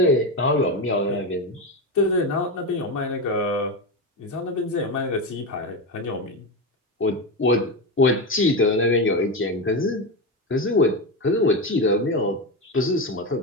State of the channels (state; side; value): normal; both; correlation 0.16